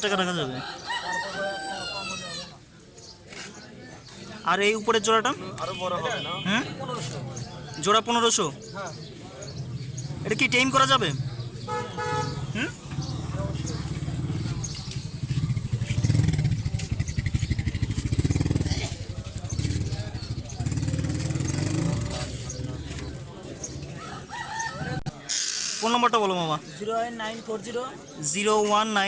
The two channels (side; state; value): both; identical; correlation 1.00